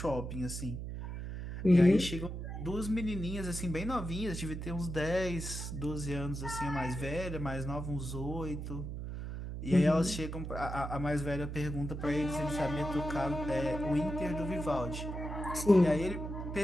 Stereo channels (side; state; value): right; noise; hum, 6 dB below the sound